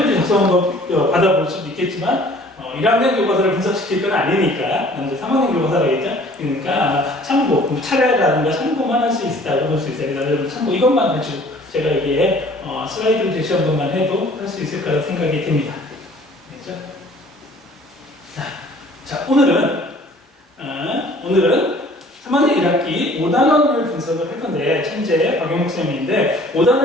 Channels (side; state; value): both; normal; correlation 0.52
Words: 작성한 거 받아볼 수도 있겠지만 1학년 교과서를 분석시킬 건 아니니까 이제 3학년 교과서라겠죠. 그러니까 참고, 차례라든가 참고만 할 수 있다고 볼 수 있어요. 그래서 참고 이것만 가지고 제가 여기에 슬라이드를 제시한 것만 해도 할 수 있을 거라 생각이 됩니다. 그렇죠? 자, 오늘은 3학년 1학기 5단원을 분석을 할 건데, 천재 박용욱 쌤인데,